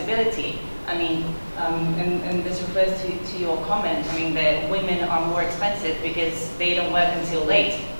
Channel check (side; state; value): both; inverted; correlation -1.00